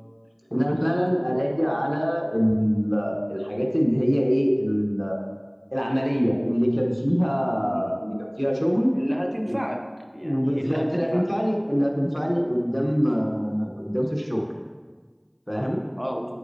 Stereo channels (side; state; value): both; identical; correlation 1.00